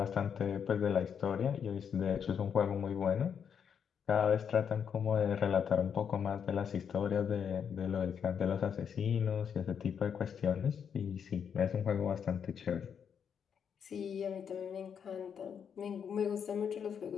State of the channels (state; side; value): quieter; right; 7.5 dB